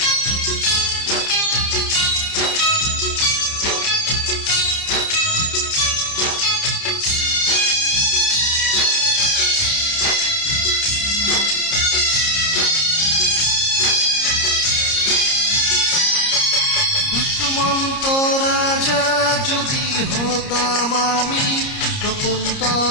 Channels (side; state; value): right; late; 30 ms